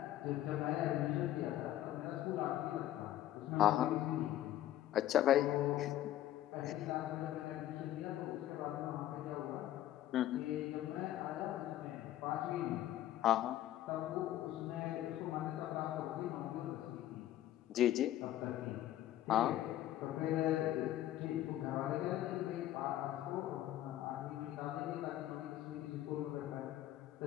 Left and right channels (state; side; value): quieter; right; 13.1 dB